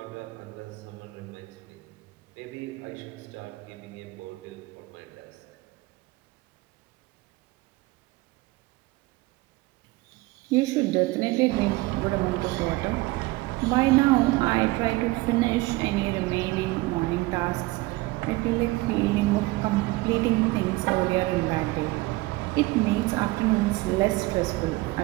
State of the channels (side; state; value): left; quieter; 21.2 dB